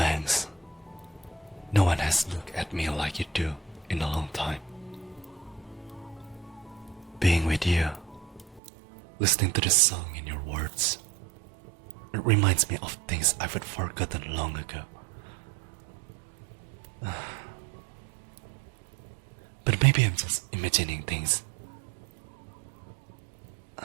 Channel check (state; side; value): drops out; left; at 8.6 s